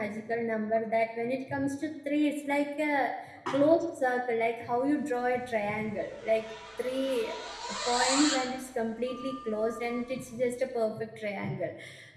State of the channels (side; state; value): both; identical; correlation 1.00